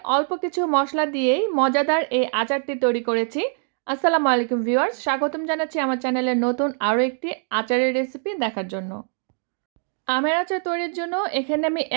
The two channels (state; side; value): silent; left; 58 dB below the other